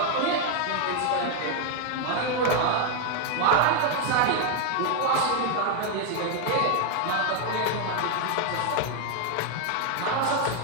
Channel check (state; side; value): different; both; correlation 0.01